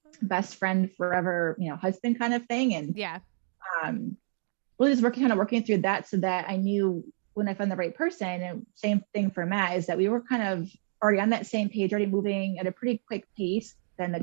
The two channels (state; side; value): silent; left; digital silence